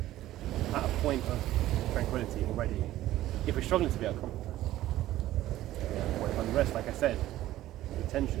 at a point of tranquility already if we're struggling to be at a comfort zone. Or if unrest, like I said, the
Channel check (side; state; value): left; quieter; 14.6 dB